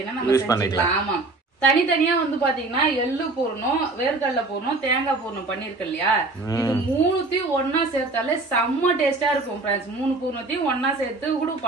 நம்ம செஞ்சுக்கலாம். ஆமா, தனித்தனியா வந்து பாத்தீங்கன்னா எள்ளு பூர்ணம், வேர்க்கடலை பூர்ணம், தேங்காய் பூர்ணம் பண்ணிருக்கு இல்லையா, இது மூணுத்தையும் ஒன்னா சேர்த்தாலே செம்ம டேஸ்டா இருக்கும் ஃப்ரெண்ட்ஸ். 3 பூர்ணத்தையும் ஒன்னா சேர்த்து கூட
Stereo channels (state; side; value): quieter; left; 3.3 dB